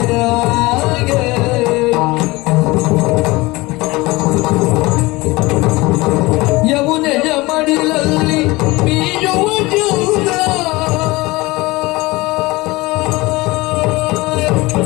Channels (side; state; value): right; quieter; 21.7 dB